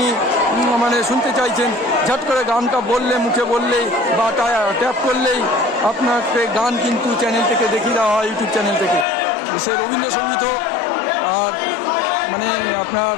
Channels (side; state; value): right; drops out; at 9.1 s